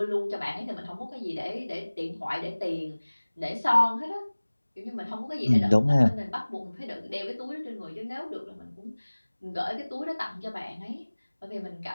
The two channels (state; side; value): inverted; both; correlation -1.00